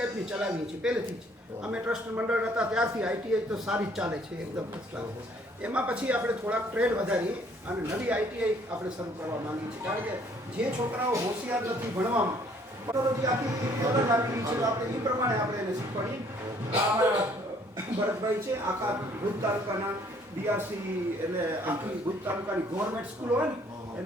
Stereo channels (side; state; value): both; normal; correlation 0.61